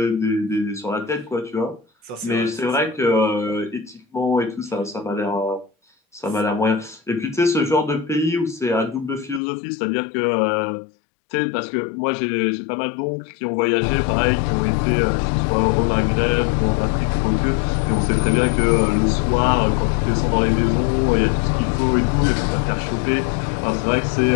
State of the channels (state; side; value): drops out; right; at 9.4 s